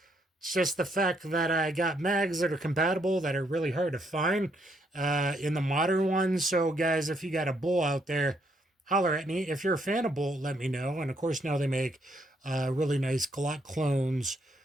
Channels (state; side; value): normal; both; correlation 0.73